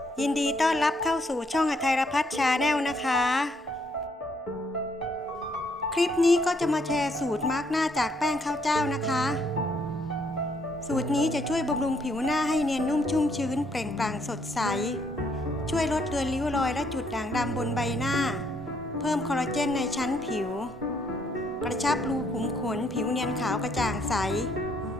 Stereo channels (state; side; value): normal; both; correlation 0.70